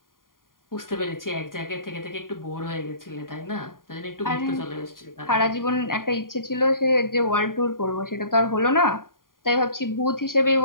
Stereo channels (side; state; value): right; late; 0.91 ms